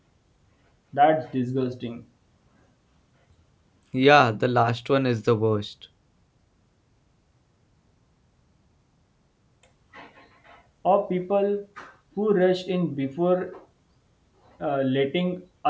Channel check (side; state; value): both; identical; correlation 1.00